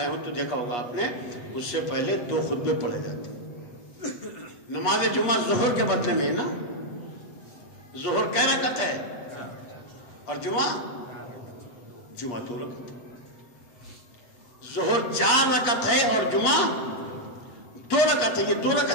ہو تو دیکھا ہوگا آپ نے, اس سے پہلے 2 خطبے پڑھے جاتے. نماز جمعہ ظہر کے بدلے میں نا, ظہر کیا رکعت ہے اور جمعہ 2 رکعت. ظہر 4 رکعت ہے اور جمعہ 2 رکعت ہے. یہ 2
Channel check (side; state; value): right; late; 8.4 ms